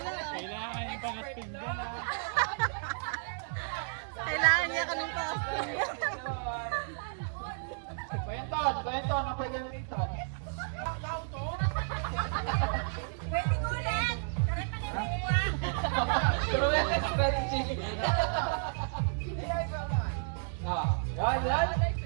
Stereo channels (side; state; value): left; silent; digital silence